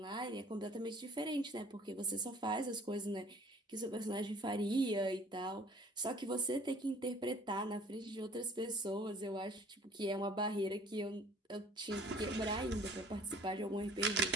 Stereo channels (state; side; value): normal; both; correlation 0.53